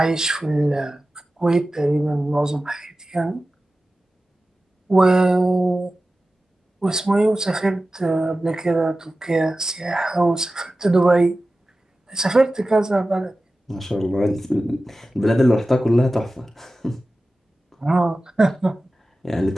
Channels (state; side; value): normal; both; correlation 0.95